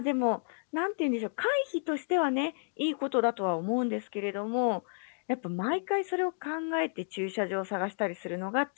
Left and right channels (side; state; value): right; silent; digital silence